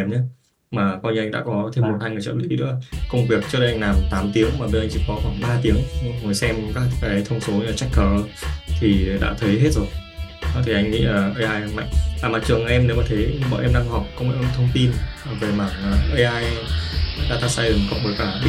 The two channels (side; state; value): both; identical; correlation 1.00